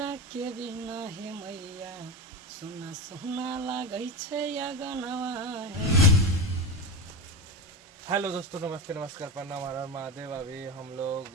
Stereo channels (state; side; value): normal; both; correlation 0.19